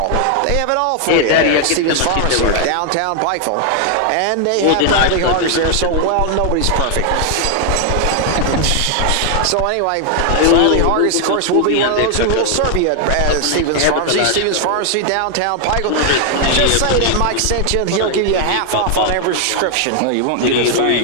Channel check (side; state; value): both; different; correlation 0.00